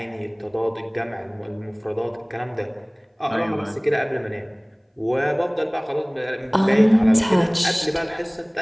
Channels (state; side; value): identical; both; correlation 1.00